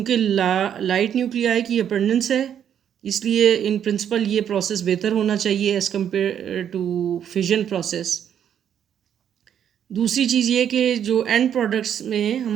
लाइट न्यूक्लियाई की अबंडेंस है, इसलिए इन प्रिंसिपल ये प्रोसेस बेहतर होना चाहिए as compare to fission process. दूसरी चीज़ ये कि जो एंड प्रोडक्ट्स में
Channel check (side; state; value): left; quieter; 9.1 dB